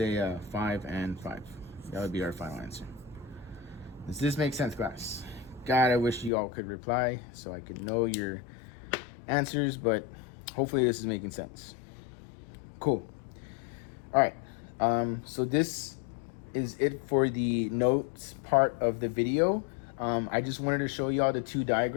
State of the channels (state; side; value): drops out; right; at 6.3 s